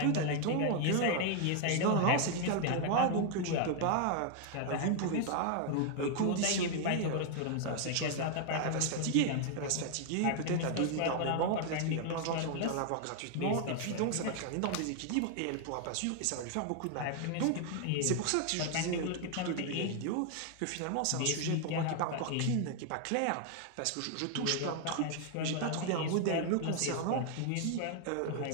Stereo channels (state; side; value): different; both; correlation 0.00